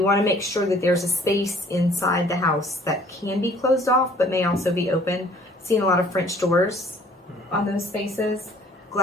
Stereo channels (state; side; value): normal; both; correlation 0.56